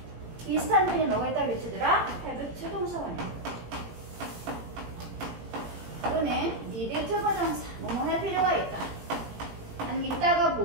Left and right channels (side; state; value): left; late; 18 ms